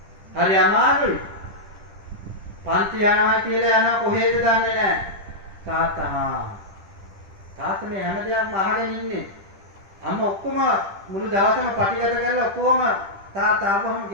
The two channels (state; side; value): late; left; 10 ms